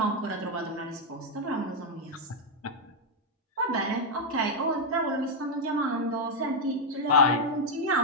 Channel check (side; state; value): both; normal; correlation 0.00